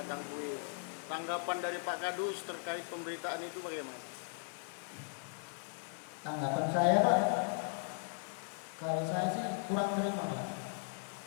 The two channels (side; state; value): right; silent; 53 dB below the other